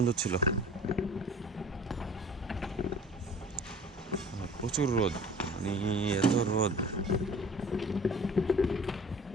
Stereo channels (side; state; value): both; normal; correlation 0.46